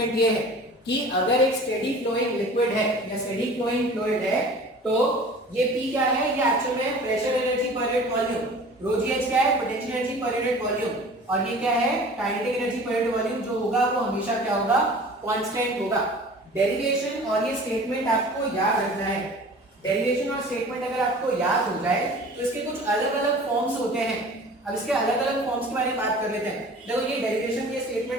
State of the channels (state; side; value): normal; both; correlation 0.43